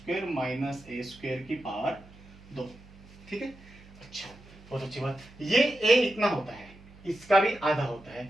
minus ए स्क्वायर की पावर 2, ठीक है। अच्छा बहुत अच्छी बात, ये a इतना होता है, इसका भी आधा होता है,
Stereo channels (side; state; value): right; noise; hum, 22 dB below the sound